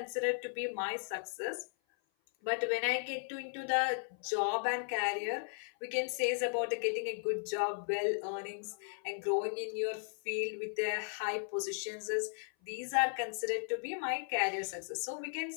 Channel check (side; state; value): right; silent; 54 dB below the other